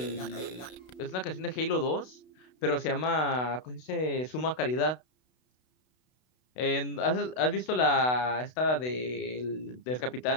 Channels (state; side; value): late; right; 32 ms